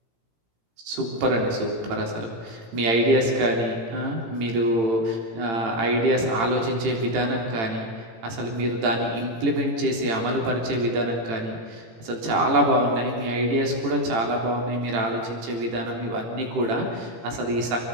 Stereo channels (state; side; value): late; left; 18 ms